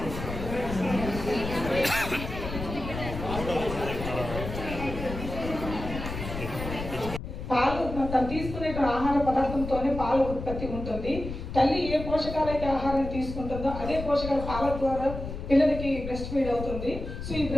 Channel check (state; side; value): noise; left; rumble, 7 dB below the sound